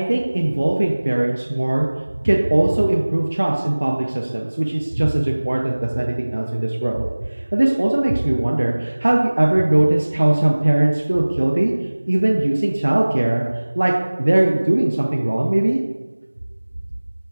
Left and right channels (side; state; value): both; inverted; correlation -1.00